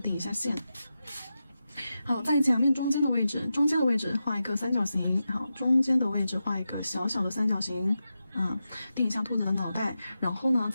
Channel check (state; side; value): inverted; both; correlation -0.90